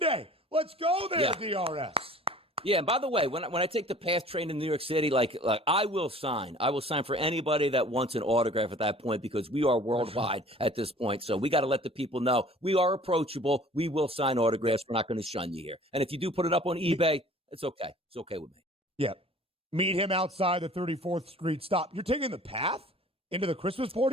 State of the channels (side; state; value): both; normal; correlation 0.48